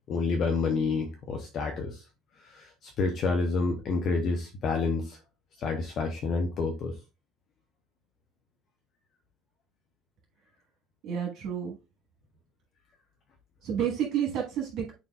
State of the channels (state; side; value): normal; both; correlation 0.62